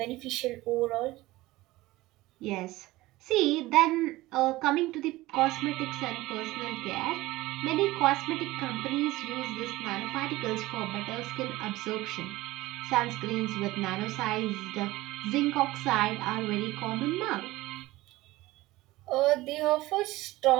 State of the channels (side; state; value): left; quieter; 18.6 dB